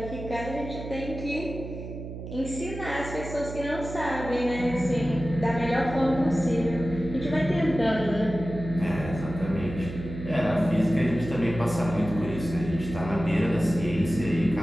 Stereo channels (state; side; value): noise; right; hum, 9 dB below the sound